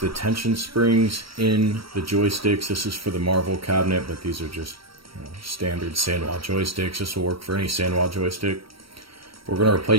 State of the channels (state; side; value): late; left; 0.75 ms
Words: tension springs in the joysticks. This is for the Marvel cabinet, but these are just standard Sanwa joysticks. This will work for any Sanwa joystick. We're going to